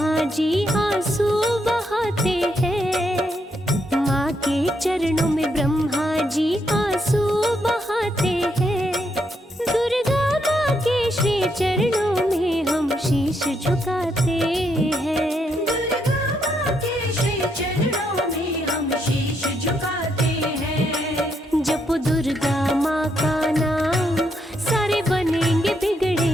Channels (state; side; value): normal; both; correlation 0.77